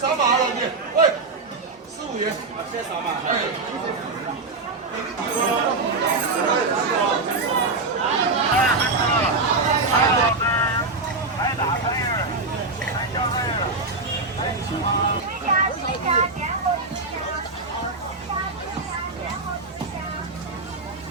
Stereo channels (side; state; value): left; quieter; 3.6 dB